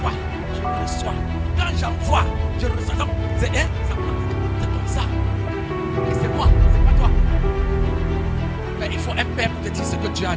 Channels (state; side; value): identical; both; correlation 1.00